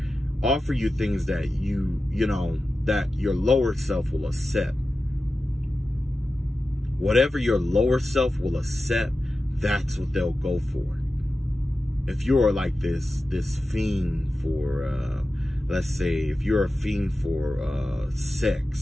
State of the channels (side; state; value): both; normal; correlation 0.93